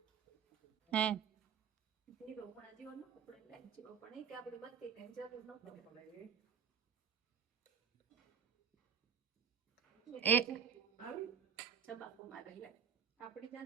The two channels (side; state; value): left; quieter; 7.5 dB